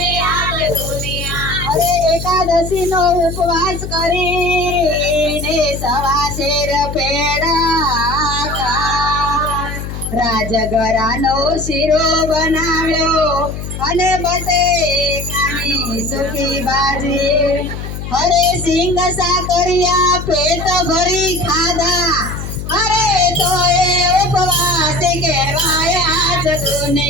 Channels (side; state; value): left; noise; hum, 7 dB below the sound